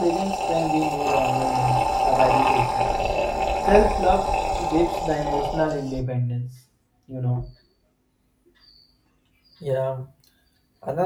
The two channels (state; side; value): identical; both; correlation 1.00